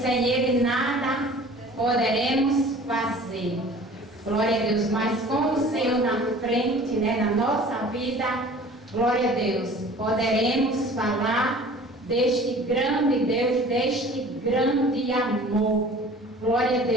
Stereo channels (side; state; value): both; normal; correlation 0.46